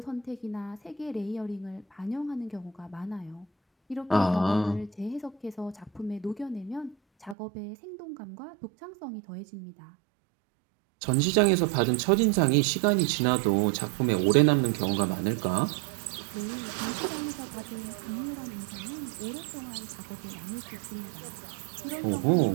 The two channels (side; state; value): left; drops out; at 7.4 s